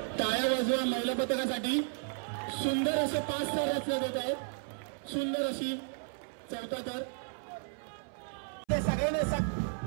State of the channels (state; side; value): silent; left; 55 dB below the other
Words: टाळ्या वाजवा महिला पथकासाठी. सुंदर असे 5 थर रचले जात आहेत. सुंदर अशी 4था थर. सगळ्यांनी